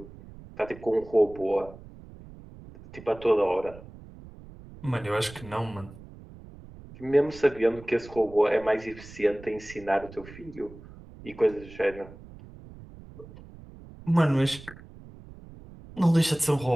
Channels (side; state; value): right; noise; rumble, 18 dB below the sound